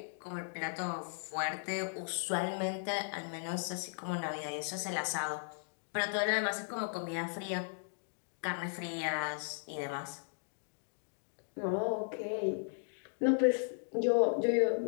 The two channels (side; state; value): right; silent; digital silence